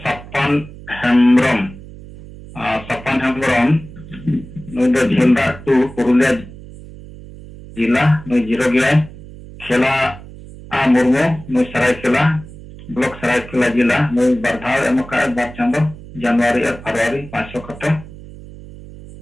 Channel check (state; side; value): noise; right; hum, 16 dB below the sound